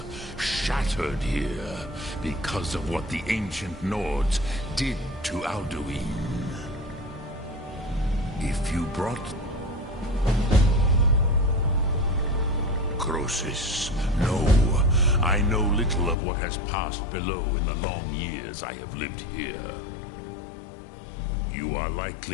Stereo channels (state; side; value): drops out; right; at 16.2 s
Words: Shattered here because of what the ancient Nords did to Alduin. If you brought necrosis. No, I know little of what has passed below in the long years I have lived here. You are